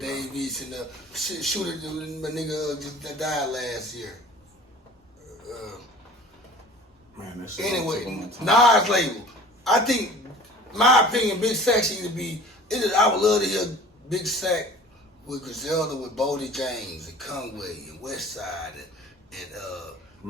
East and the shooter, my nigga just died last year. Man, that shit. Anyway, Nas label. I think, my opinion, Big Sacc should either be. I would love to hear Big Sacc with Griselda, with Bodie James and Conway and Westside and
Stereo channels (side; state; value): both; normal; correlation 0.45